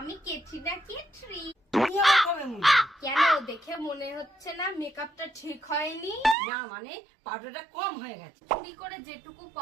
কেটরি না কেটরি। তুমি আমার কবে মুড়ি? কেন, দেখে মনে হচ্ছে না মেকআপটা ঠিক হয়নি? না মানে পাউডারটা কম হয়ে গেছে। চুরি করে যেটুকু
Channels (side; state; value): left; drops out; at 6.4 s